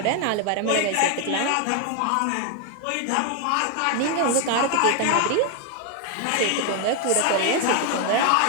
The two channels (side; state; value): both; different; correlation 0.01